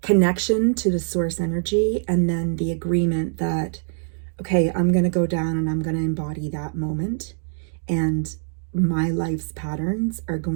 connection to the source energy, and then the agreement that, okay, I'm going to go down and I'm going to embody that moment, and my life's patterns are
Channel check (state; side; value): silent; left; 63 dB below the other